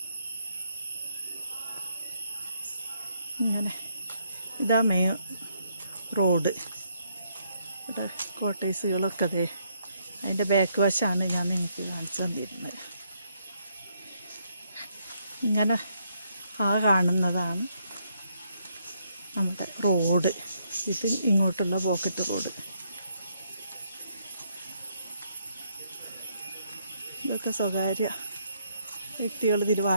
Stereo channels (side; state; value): both; inverted; correlation -0.74